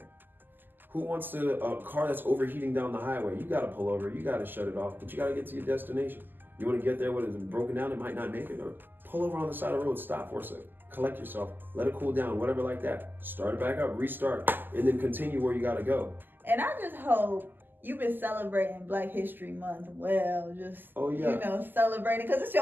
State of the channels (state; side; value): late; left; 0.091 ms